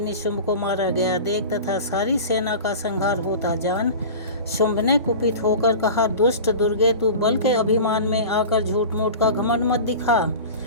को मारा गया देख तथा सारी सेना का संहार होता जान शुंभ ने कुपित होकर कहा, दुष्ट दुर्गे, तू बल के अभिमान में आकर झूठ मूठ का घमंड मत दिखा।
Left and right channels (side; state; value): both; inverted; correlation -0.35